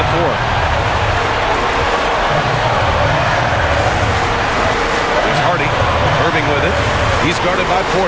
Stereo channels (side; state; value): both; identical; correlation 1.00